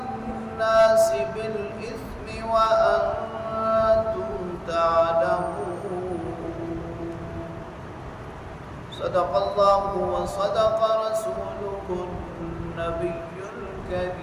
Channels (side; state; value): both; identical; correlation 1.00